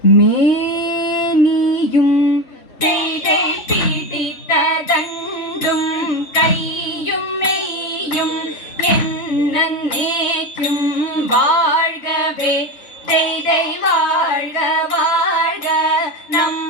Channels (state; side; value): late; right; 3.2 ms